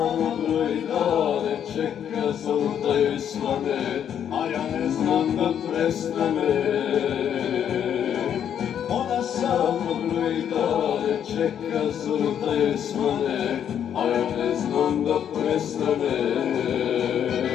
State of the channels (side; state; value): right; quieter; 9.1 dB